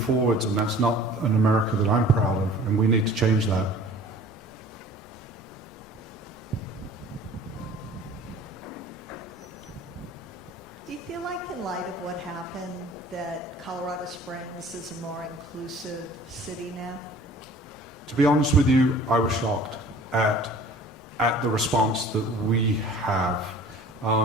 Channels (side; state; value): both; normal; correlation 0.47